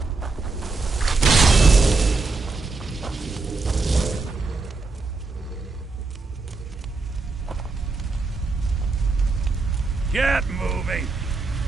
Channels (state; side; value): quieter; left; 3.9 dB